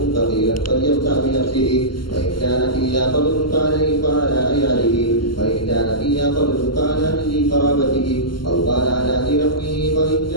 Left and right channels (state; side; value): late; right; 0.72 ms